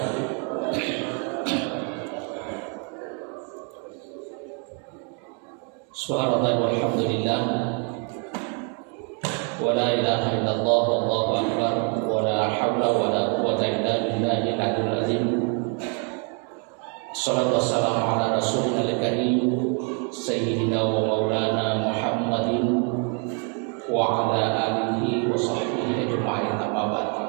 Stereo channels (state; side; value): quieter; left; 38.8 dB